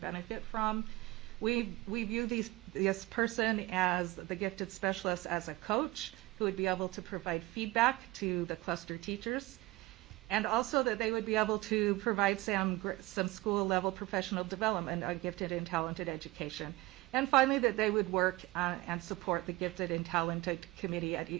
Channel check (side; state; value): left; quieter; 20.0 dB